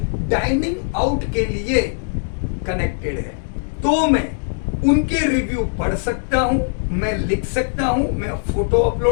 डाइनिंग आउट के लिए कनेक्टेड है। तो मैं उनके रिव्यू पढ़ सकता हूं, मैं लिख सकता हूं, मैं फोटो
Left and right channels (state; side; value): silent; right; digital silence